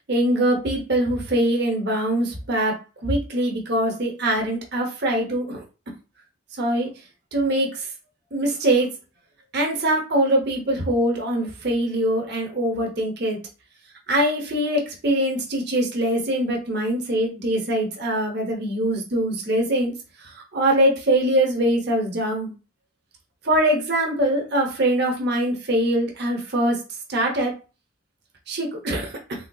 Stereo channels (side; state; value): both; normal; correlation 0.22